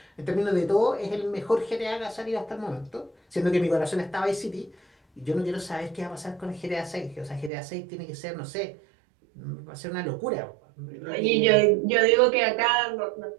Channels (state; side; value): drops out; left; at 7.5 s